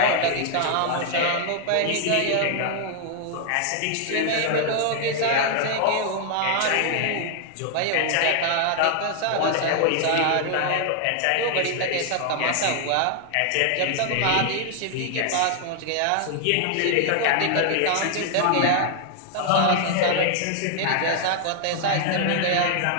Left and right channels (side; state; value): both; different; correlation 0.00